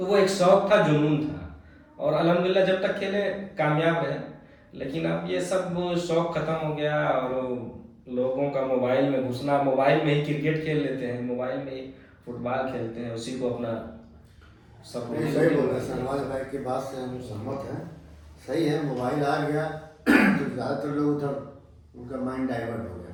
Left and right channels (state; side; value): identical; both; correlation 1.00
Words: वो एक शौक था, जुनून था, और अल्हम्दुलिल्लाह जब तक खेले कामयाब रहे। लेकिन अब ये सब शौक खत्म हो गया और लोगों का मोबाइल में घुसना, मोबाइल में ही क्रिकेट खेल लेते हैं, मोबाइल में ही फुटबॉल खेलते हैं, उसी को अपना सब नहीं, सही बोल रहे हैं शहनवाज भाई की बात से हम सहमत हैं। सही है, मोबाइल आ गया तो ज़्यादातर लोग उधर उनका माइंड डाइवर्ट हो गया,